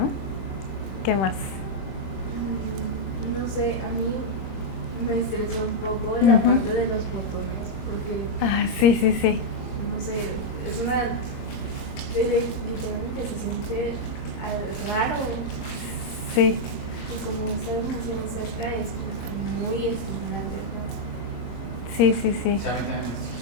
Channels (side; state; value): right; late; 26 ms